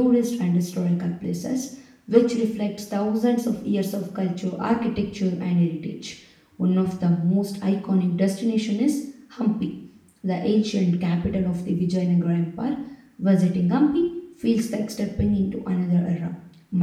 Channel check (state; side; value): identical; both; correlation 1.00